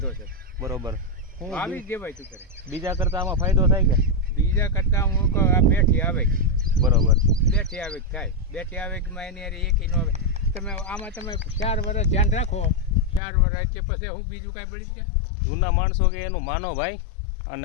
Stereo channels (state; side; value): drops out; right; at 13.2 s